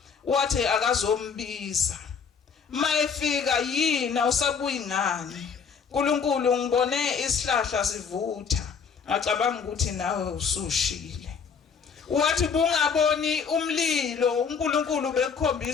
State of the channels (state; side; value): quieter; right; 6.1 dB